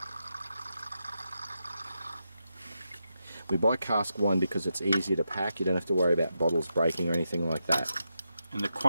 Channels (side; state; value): both; inverted; correlation -0.86